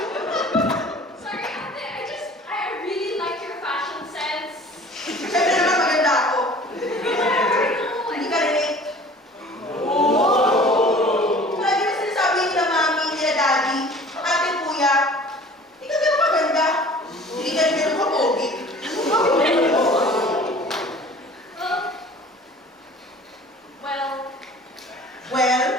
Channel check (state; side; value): normal; both; correlation 0.47